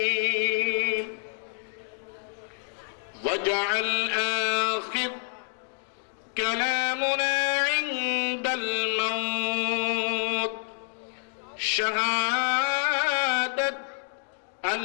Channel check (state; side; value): silent; right; digital silence